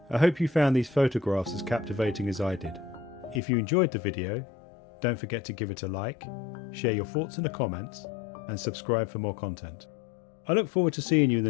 I hope you found these photographs as captivating as I did. If you enjoyed the video, don't forget to give it a like, share your thoughts in the comments, and subscribe for more content. I look forward to seeing you in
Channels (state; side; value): drops out; right; at 3.4 s